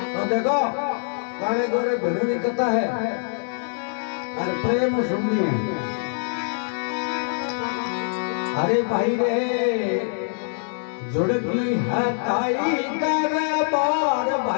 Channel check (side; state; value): right; silent; digital silence